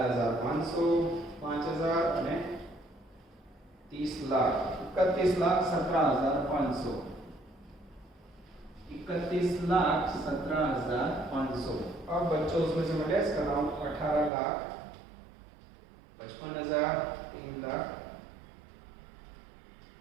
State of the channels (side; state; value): left; drops out; at 14.3 s